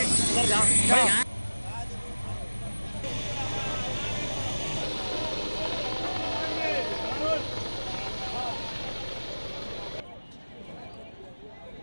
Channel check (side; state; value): both; inverted; correlation -1.00